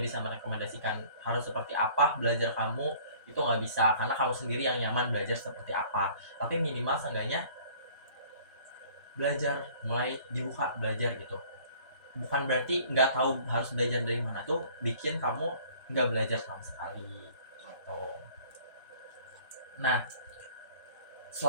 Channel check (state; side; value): inverted; both; correlation -0.52